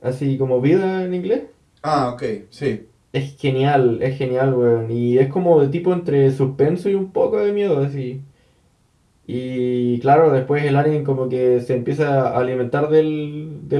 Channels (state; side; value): identical; both; correlation 1.00